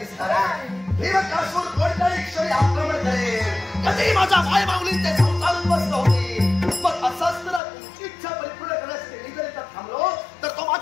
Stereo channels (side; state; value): right; drops out; at 7.6 s